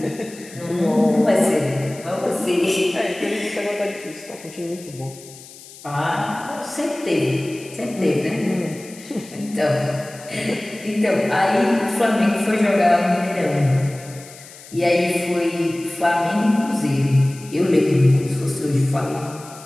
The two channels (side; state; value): left; noise; hiss, 19 dB below the sound